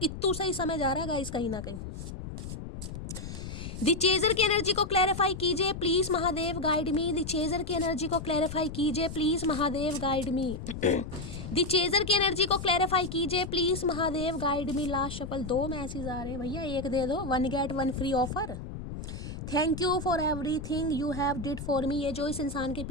सही समय जा रहा है गाइस कहीं ना कहीं। दी चेजर की एनर्जी को क्लैरिफाई कीजिए please Mahadev guide me. The chaser की एनर्जी को क्लैरिफाई कीजिए please Mahadev guide me. The chaser की एनर्जी को क्लैरिफाई कीजिए please Mahadev guide me. Last shuffle 2 message आ रहे हैं भैया, एक दे दो, 1 get 1 free offer. Thank you for everything you have did for me. ये जो इस इंसान के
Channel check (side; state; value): left; noise; rumble, 8 dB below the sound